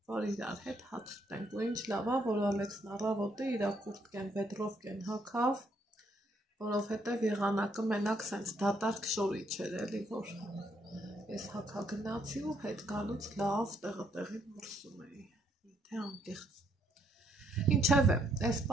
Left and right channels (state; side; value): normal; both; correlation 0.71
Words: որ իրար հետ հաց ուտենք ու ինչ լավ ա որ Ալեքսն առավոտը իրա կուրտկեն վեդրովկեն հագավ որովհետև եղանակը մենակ սենց դատարկ շորի չէր էլի որ ես հագա գնացի ու հետ գալուց լավ տեղի մրսում էի թե անկեղծ ինչև է այս